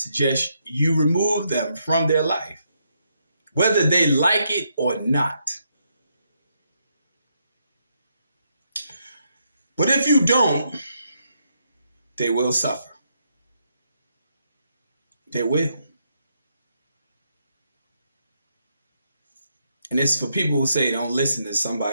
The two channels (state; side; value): inverted; both; correlation -0.78